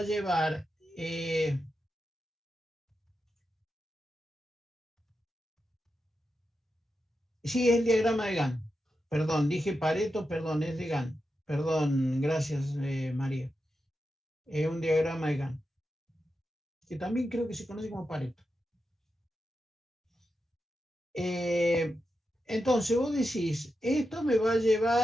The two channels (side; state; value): both; normal; correlation 0.89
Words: llevar sí, es el diagrama de Gantt. Perdón, dije Pareto, perdón, es de Gantt. Perdón, gracias, María. Es un diagrama de Gantt, que también creo que se conoce como Pareto. Entonces vos decís, esto me va a